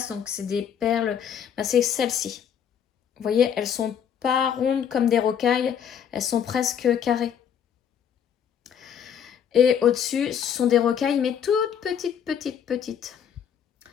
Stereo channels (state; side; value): quieter; right; 8.4 dB